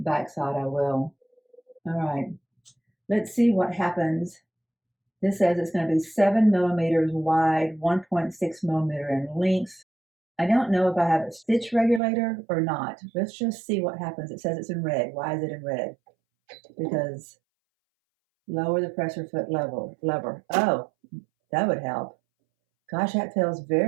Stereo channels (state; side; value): drops out; left; at 12.0 s